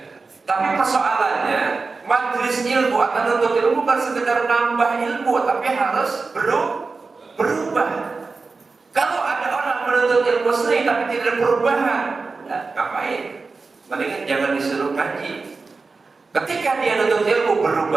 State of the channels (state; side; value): quieter; left; 4.2 dB